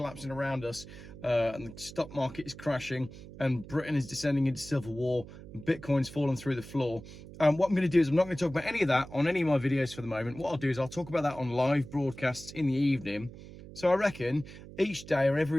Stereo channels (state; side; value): noise; right; hum, 16 dB below the sound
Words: around us and the stock market is crashing and Britain is descending into civil war and Bitcoin's fallen through the floor. What I'm going to do is I'm not going to talk about any of that on any of my videos for the moment. What I'll do is I'll talk about that on live broadcasts in the evening. So I reckon each day or